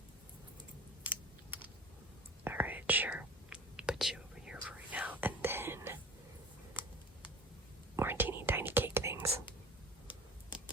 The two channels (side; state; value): both; normal; correlation 0.40